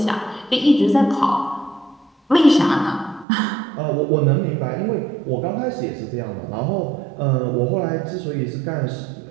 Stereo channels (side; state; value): left; drops out; at 3.2 s